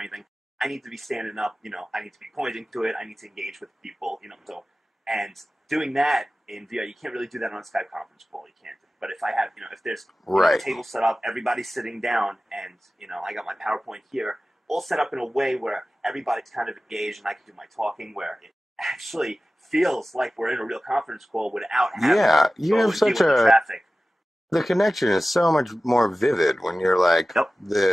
I need to be standing up. I need to be pointing to it. I need to engage with people. So, and doing that in VR, you can't really do that on a Skype conference call. You can't. But if I have, if there's a table set up, everybody's sitting down, and I got my PowerPoint here, all set up in a way where everybody's kind of engaged, and I can do my talking, where it actually feels like we're in a real conference call without having you have such a traffic. The connection is so much more vivid when you're like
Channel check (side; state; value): both; normal; correlation 0.96